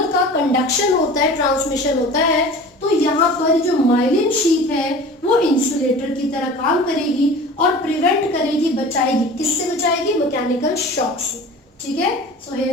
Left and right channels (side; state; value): both; normal; correlation 0.39